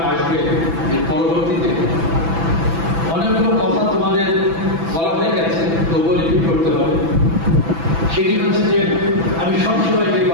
আসবে এর পরবর্তীতে অনেকগুলো কথা তোমাদের বলা হয়ে গেছে, তবুও রিপিট করতে হবে। সেটি হচ্ছে যে আমি সবসময় যে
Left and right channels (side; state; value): left; late; 6.0 ms